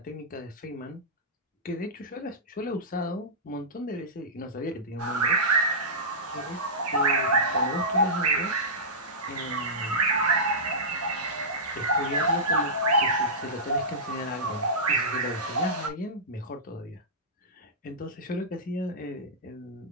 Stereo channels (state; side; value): normal; both; correlation -0.16